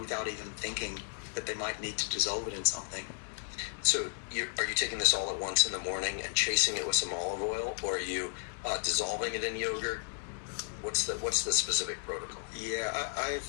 even thinking that they might need to dissolve it in something. So are you taking this all at once in the morning and chasing it with some olive oil, or are you dissolving it in yogurt? What's the specific protocol? Yeah,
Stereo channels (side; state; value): right; silent; 55 dB below the other